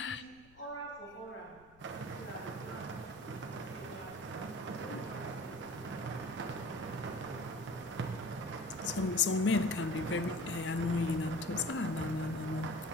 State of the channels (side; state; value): left; noise; rumble, 27 dB below the sound